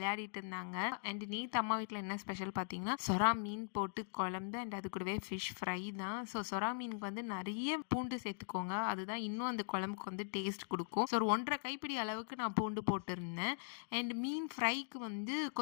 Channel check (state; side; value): silent; right; digital silence